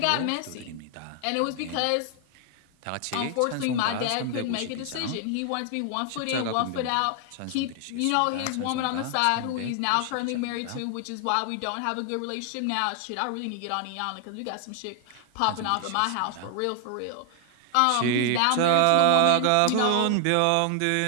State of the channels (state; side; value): different; both; correlation 0.00